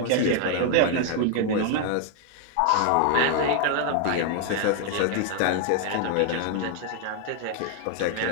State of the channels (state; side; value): different; both; correlation 0.00